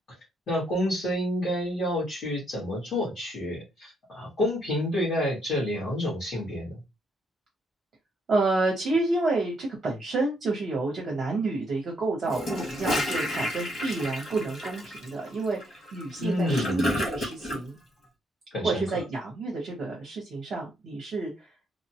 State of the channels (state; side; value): normal; both; correlation 0.73